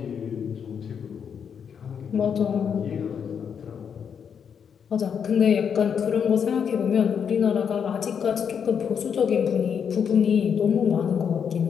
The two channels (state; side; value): quieter; right; 7.3 dB